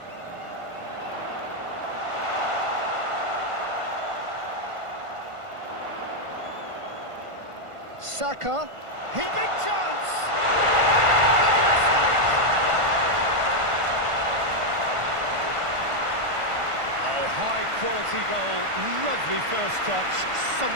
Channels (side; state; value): left; late; 1.5 ms